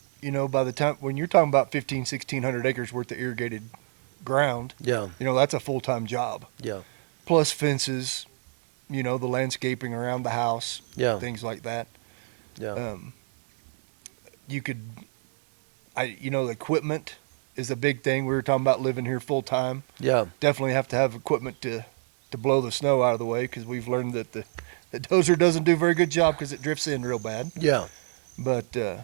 you know, by the time when you're talking about 1,600 acres worth of irrigated ground, Yeah. you know, that's a full time job. Yeah. Plus fences, you know, the landscaping around the house, Yeah. things like that. Yeah. You could, you know, the equipment is a big thing. We were talking about living here full time. Yeah. Definitely have to have equipment to blow the snow out of the way, because we've learned that the dozer doesn't do a very good job because it drifts in real bad. Yeah. But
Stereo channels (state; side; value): silent; left; 61 dB below the other